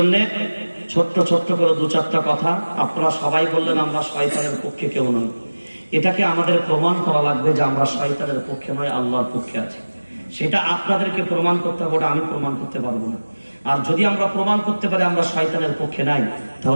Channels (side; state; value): both; inverted; correlation -1.00